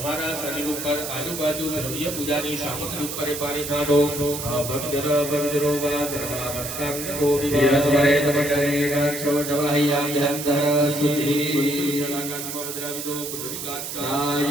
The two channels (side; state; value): right; noise; hiss, 6 dB below the sound